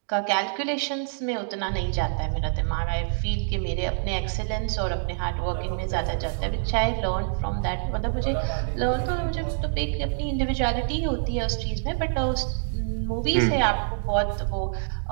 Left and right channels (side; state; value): left; silent; digital silence